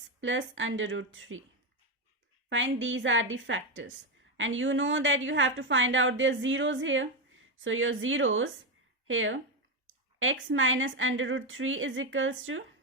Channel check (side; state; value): both; normal; correlation 0.10